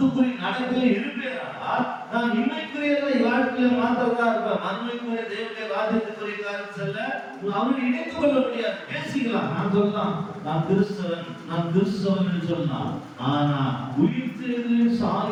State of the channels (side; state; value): both; identical; correlation 1.00